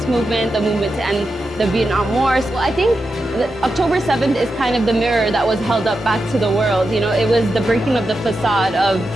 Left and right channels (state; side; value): normal; both; correlation 0.88